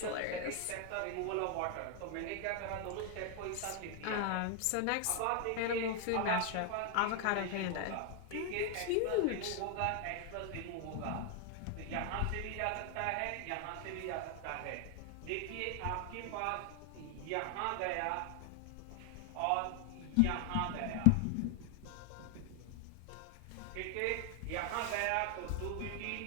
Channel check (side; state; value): both; different; correlation 0.00